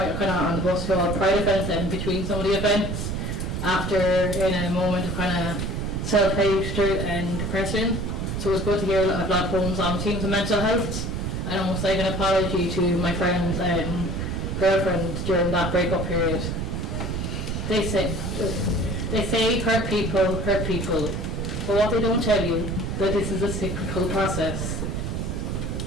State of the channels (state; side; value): noise; right; rumble, 2 dB below the sound